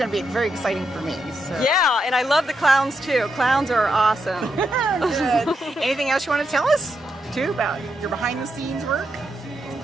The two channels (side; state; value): both; normal; correlation 0.83